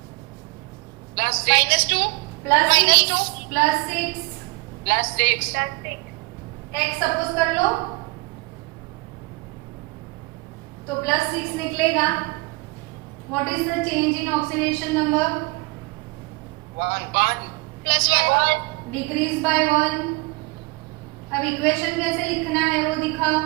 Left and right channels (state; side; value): quieter; left; 26.2 dB